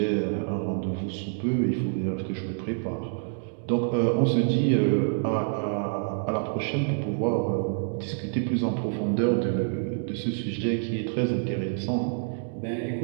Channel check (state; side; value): silent; left; digital silence